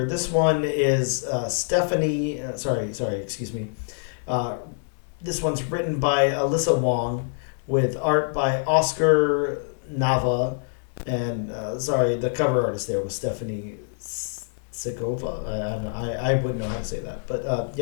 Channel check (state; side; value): silent; right; digital silence